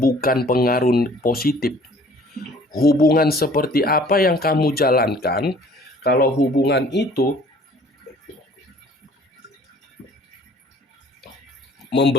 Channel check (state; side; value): normal; both; correlation 0.53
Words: pengaruh positif. Hubungan seperti apa yang kamu jalankan kalau hubungan itu